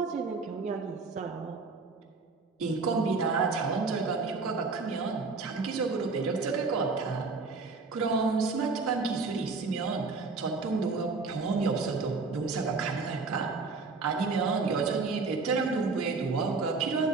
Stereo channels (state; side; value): quieter; left; 4.1 dB